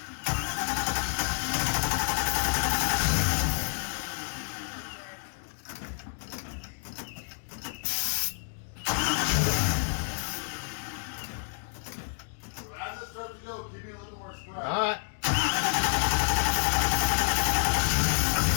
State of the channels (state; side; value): silent; right; digital silence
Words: As it starts to go, give me a little more stride. All right.